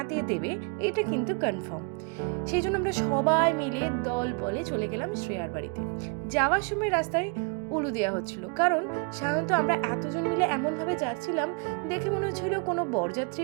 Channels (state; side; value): quieter; left; 35.3 dB